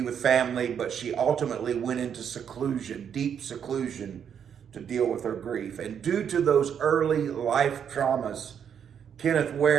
with family, but she ultimately went into seclusion, deep seclusion, to deal with her grief. And due to those early life traumas, Kenneth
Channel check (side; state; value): left; quieter; 8.1 dB